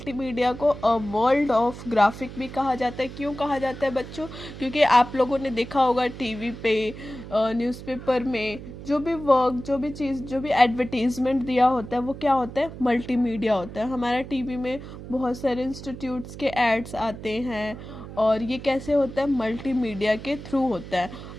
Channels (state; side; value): noise; right; hum, 12 dB below the sound